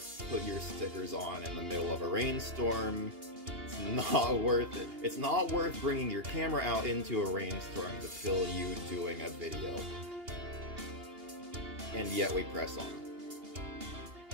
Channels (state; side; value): late; left; 2.8 ms